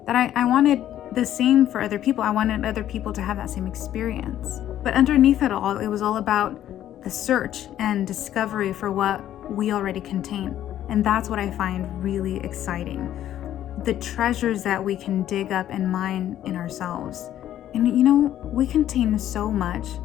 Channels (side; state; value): right; quieter; 11.8 dB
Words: that I wanted the same for other people. I wanted other people to have that same experience. But underneath it all, it was all about the search and discovery for what we already contain. And that's what I find really exciting. The treasures that we can dig up and mine in ourselves. And we contain so much,